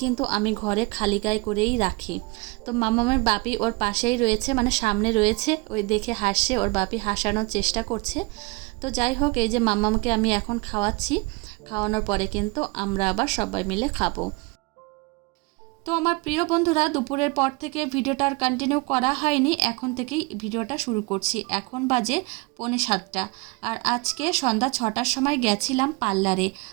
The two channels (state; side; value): quieter; left; 26.3 dB